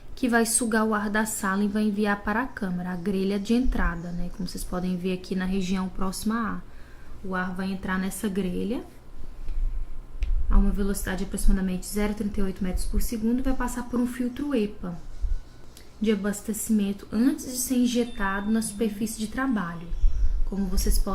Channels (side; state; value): both; identical; correlation 1.00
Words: que vai sugar o ar da sala e vai enviar para a câmara, a grelha de entrada, né? Como vocês podem ver aqui na região próxima a ar. O ar vai entrar nessa grelha a uma velocidade de aproximadamente 0,38 metros por segundo e vai passar por um filtro EPA de abastecimento antes de ser injetado na superfície de trabalho, como vocês